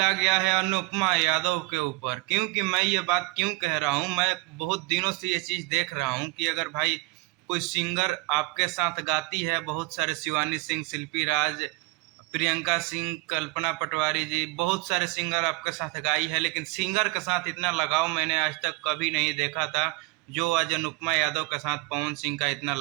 आ गया है अनुपमा यादव के ऊपर। क्योंकि मैं ये बात क्यों कह रहा हूँ, मैं बहुत दिनों से ये चीज़ देख रहा हूँ कि अगर भाई कोई सिंगर आपके साथ गाती है, बहुत सारे शिवानी सिंह, शिल्पी राज, प्रियंका सिंह, कल्पना पटवारी जी, बहुत सारे सिंगर आपके साथ गाई है, लेकिन सिंगर के साथ इतना लगाव मैंने आज तक कभी नहीं देखा था जो आज अनुपमा यादव के साथ पवन सिंह का इतना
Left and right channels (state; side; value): quieter; left; 25.1 dB